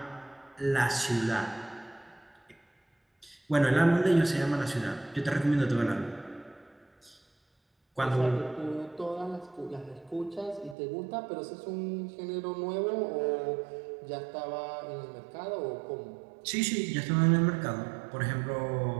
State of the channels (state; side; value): drops out; left; at 10.8 s